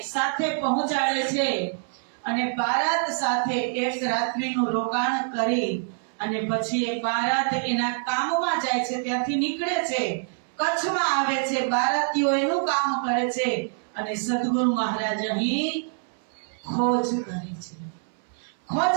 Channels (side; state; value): left; silent; 61 dB below the other